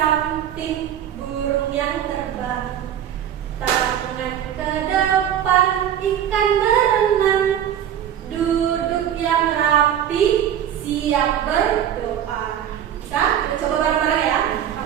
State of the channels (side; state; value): left; quieter; 10.0 dB